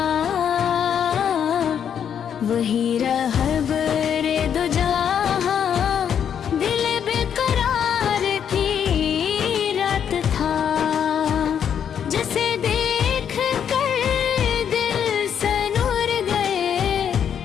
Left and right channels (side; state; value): right; quieter; 8.4 dB